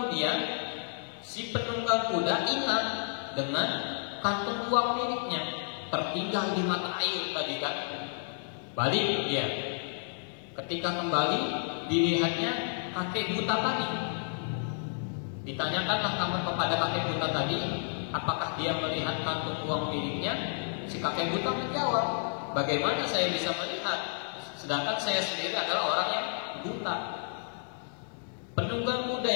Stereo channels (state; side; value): silent; right; 57 dB below the other